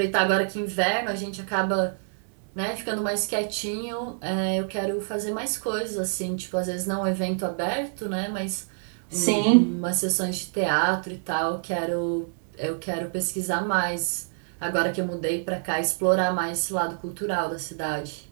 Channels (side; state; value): left; silent; digital silence